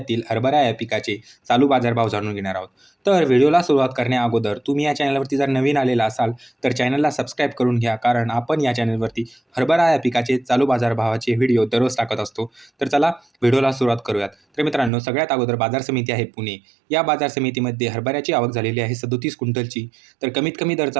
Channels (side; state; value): left; drops out; at 14.9 s